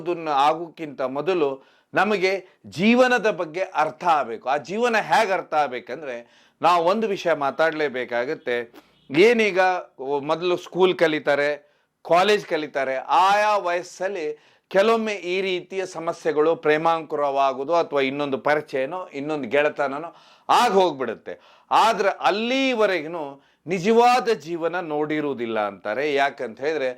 ಆಗೋಕ್ಕಿಂತ ಮೊದಲು ನಮಗೆ ಜೀವನದ ಬಗ್ಗೆ ಅರ್ಥ ಆಗಬೇಕು. ಆ ಜೀವನ ಹೇಗೆ ಅರ್ಥ ಆಗ್ಬೇಕಂದ್ರೆ ನಾವು ಒಂದು ವಿಷಯ ಮಾತಾಡಲೇಬೇಕಾಗತ್ತೆ. ಏನೀಗ ಮೊದಲು ಸ್ಕೂಲ್ ಕಲಿತಾರೆ, ಕಾಲೇಜ್ ಕಲಿತಾರೆ, ಆಯಾ ವಯಸ್ಸಲ್ಲಿ ಕೆಲವೊಮ್ಮೆ ಈ ರೀತಿಯ ಸಮಸ್ಯೆಗಳು ಪ್ರೇಮಾಂಕುರವಾಗುವುದು ಅಥವಾ ಇನ್ನೊಂದು ಪರಿಚಯನೋ ಇನ್ನೊಂದು ಗೆಳೆತನನೋ ಆಗ ಹೋಗ್ಬಿಡುತ್ತೆ. ಆದ್ರೆ ಅಲ್ಲಿವರೆಗೂ ನಿಜವಾದ ಜೀವನ ನೋಡಿರುವುದಿಲ್ಲ ಅಂತಾರೆ. ಯಾಕಂತ ಹೇಳಿದ್ರೆ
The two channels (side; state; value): both; identical; correlation 1.00